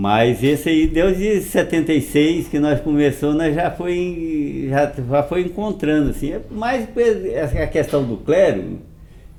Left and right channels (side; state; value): both; identical; correlation 1.00